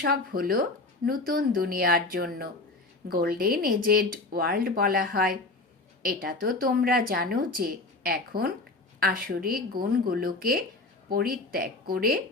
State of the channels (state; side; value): quieter; right; 3.2 dB